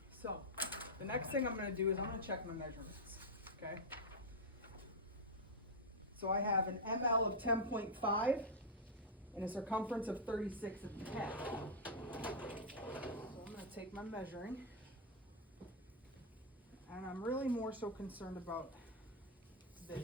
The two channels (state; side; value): normal; both; correlation -0.03